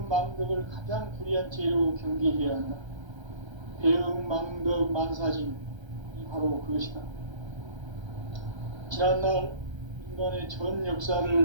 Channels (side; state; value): left; late; 1.3 ms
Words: 망덕을 가장 불의한 죄로 경계해야 한다. 배움 망덕 만사짐이 바로 그것이다. 지난날 인간의 전